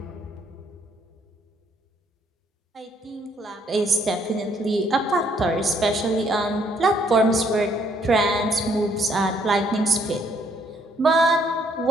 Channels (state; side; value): normal; both; correlation 0.67